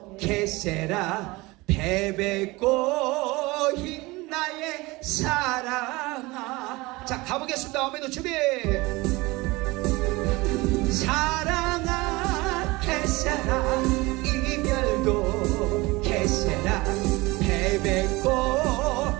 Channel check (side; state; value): left; quieter; 22.4 dB